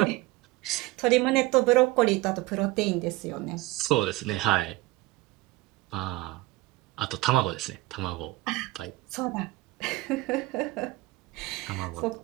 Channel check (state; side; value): quieter; left; 19.8 dB